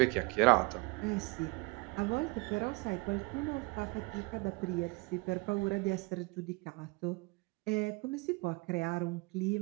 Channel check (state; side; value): quieter; left; 27.3 dB